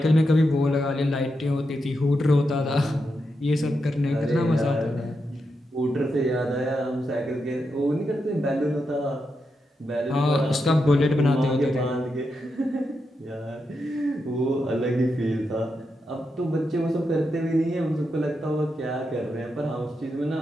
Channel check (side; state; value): both; normal; correlation 0.85